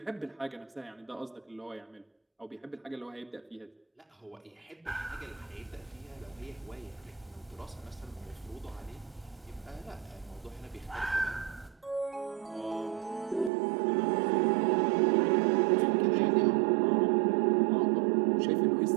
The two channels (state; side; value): drops out; left; at 13.5 s